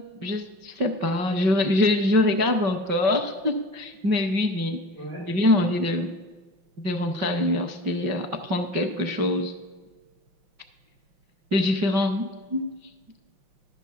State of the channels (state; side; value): late; left; 5.3 ms